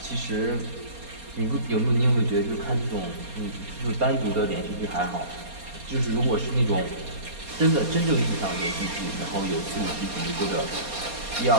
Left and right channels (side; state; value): left; late; 4.2 ms